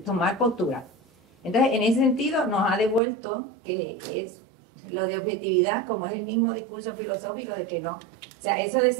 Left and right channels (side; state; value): left; drops out; at 3.0 s